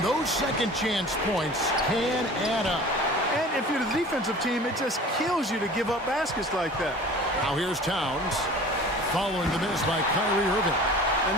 those second chance points can add up. And if you're the defensive team, it just kills you to give up baskets like that. Now here's Towns, following the miss by Kyrie Irving. And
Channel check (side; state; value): both; normal; correlation 0.42